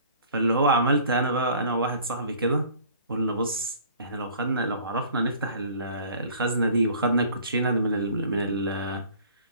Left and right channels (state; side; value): inverted; both; correlation -0.50